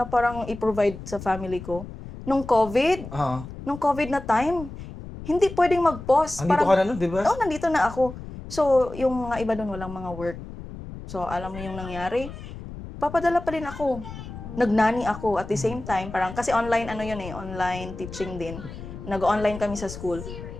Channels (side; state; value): left; noise; rumble, 12 dB below the sound